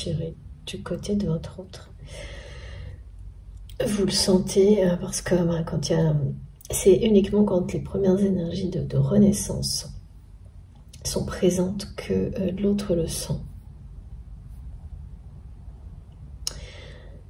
du côté de votre autre. Vous le sentez parce que quand il y a... C'est uniquement quand les premières énergies de renaissance sont présentes que l'autre le sent.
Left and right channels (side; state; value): both; identical; correlation 1.00